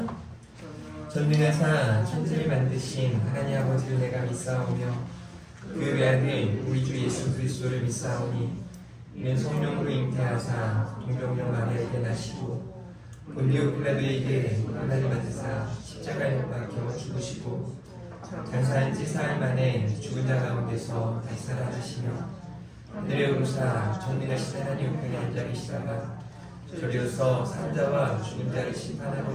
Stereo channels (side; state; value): both; identical; correlation 1.00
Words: 전능하사 천지를 만드신 하나님 아버지를 내가 믿사오며 그 외아들 우리 주 예수 그리스도를 믿사오니 이는 성령으로 잉태하사 동정녀 마리아에게 나시고 본디오 빌라도에게 고난을 받으사 십자가에 못 박혀 죽으시고 장사한 지 사흘 만에 죽은 자 가운데서 다시 살아나시며 하늘에 오르사 전능하신 하나님 우편에 앉아 계시다가 저리로서 산자와 죽은 자를 심판하러